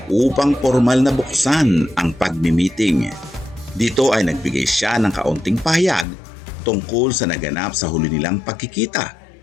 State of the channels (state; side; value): drops out; right; at 6.1 s